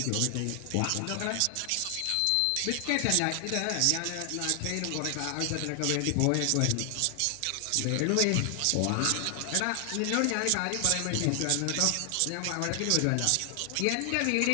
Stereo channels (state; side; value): different; both; correlation 0.00